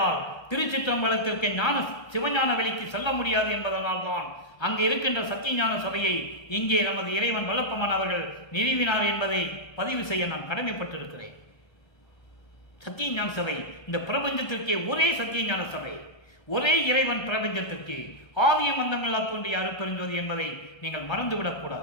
திருச்சிற்றம்பலத்திற்கு சிவஞான வெளிக்கு செல்ல முடியாது என்பதனால் தான் அங்கே இருக்கின்ற சத்தியஞான சபையை இங்கே நமது இறைவன் வல்லப்பமான் அவர்கள் நிறுவினார் என்பதை பதிவு செய்ய நான் கடமைப்பட்டிருக்கிறேன். சத்தியஞான சபை இந்த பிரபஞ்சத்திற்கே ஒரே சத்தியஞான சபை, ஒரே இறைவன் பிரபஞ்சத்திற்கு ஆதியம் அந்தமில்லா தோன்றிய அருட்பெருஞ்சோதி என்பதை நீங்கள்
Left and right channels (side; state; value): right; late; 1.3 ms